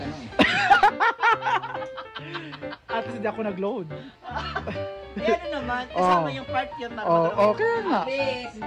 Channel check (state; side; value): identical; both; correlation 1.00